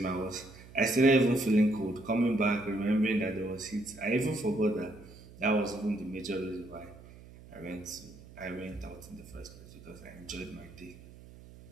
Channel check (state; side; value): noise; right; hum, 19 dB below the sound